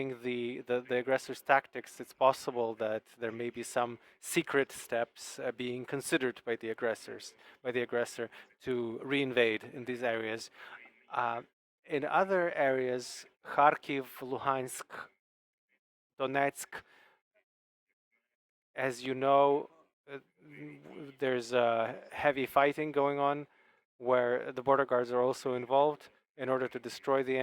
the aggressors' tactics, it's possible that there may be some secret steps being considered by the aggressor to reinvade in these areas. In other areas, Kharkiv, Luhansk, Donetsk, as you know, there's heavy fighting going on, where the border guards are also involved in order to destroy the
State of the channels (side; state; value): both; identical; correlation 1.00